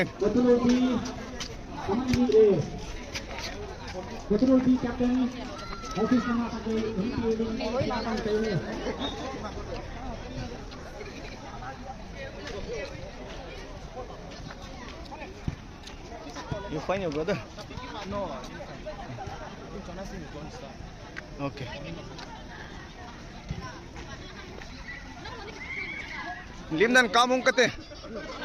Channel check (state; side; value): identical; both; correlation 1.00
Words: Betul di captain. Office nama pakai You find your brother? No. Okay. Lim dan kamung kate.